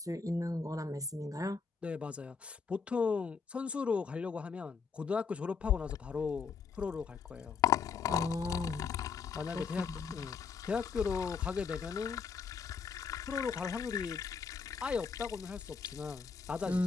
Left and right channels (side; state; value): right; quieter; 5.5 dB